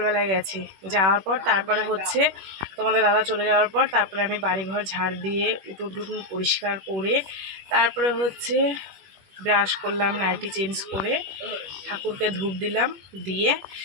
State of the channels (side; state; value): left; late; 21 ms